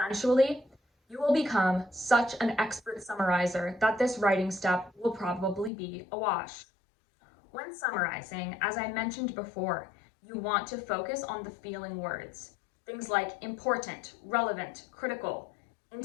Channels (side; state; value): right; drops out; at 5.7 s